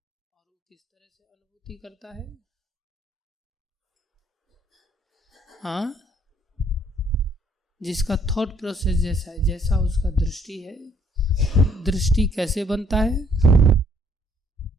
वो किस तरह से अनुभूति करता है? हाँ, जिसका थॉट प्रोसेस जैसा है, जैसा उसका दृष्टि है। दृष्टि कैसे बनता है?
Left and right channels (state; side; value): normal; both; correlation 0.65